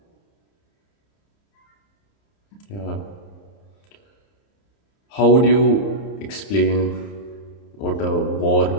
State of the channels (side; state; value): right; late; 30 ms